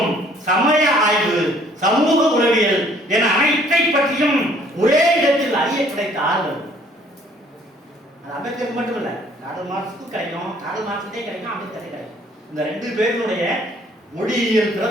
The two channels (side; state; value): both; normal; correlation 0.59